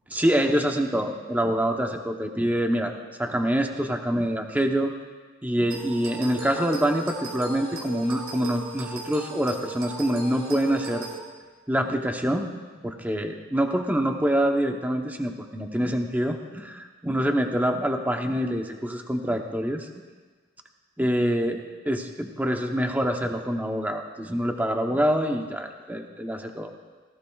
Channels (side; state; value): both; normal; correlation 0.84